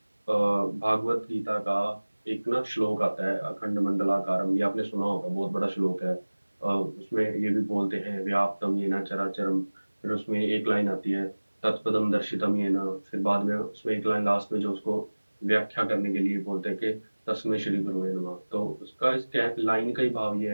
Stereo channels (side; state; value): both; inverted; correlation -1.00